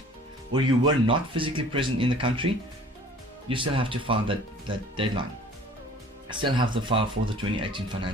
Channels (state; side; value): normal; both; correlation 0.49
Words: or you were not physically present in the country, you still have to file that deadline. Still have to file for the 2018